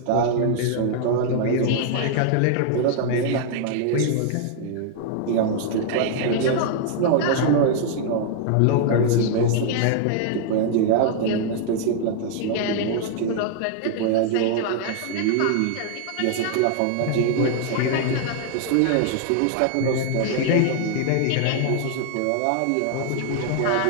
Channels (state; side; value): different; both; correlation 0.00